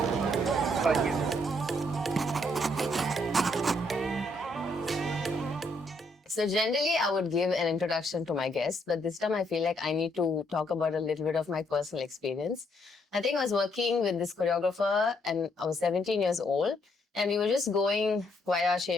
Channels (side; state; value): both; normal; correlation 0.72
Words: So generally, I would give an introduction to my guest, but this time I feel like I need to talk about a little bit of my personal experience. I think I was working with this choreographer and I was 17 years old and we were just going via